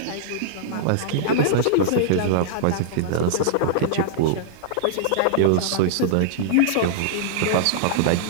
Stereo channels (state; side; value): different; both; correlation -0.02